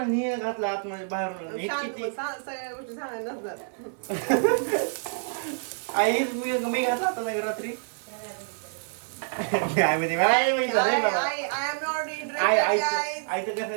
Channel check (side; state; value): left; silent; digital silence